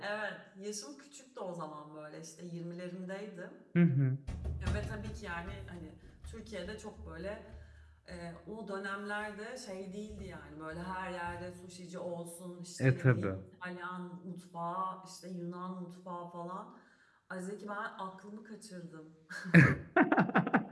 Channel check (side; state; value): both; identical; correlation 1.00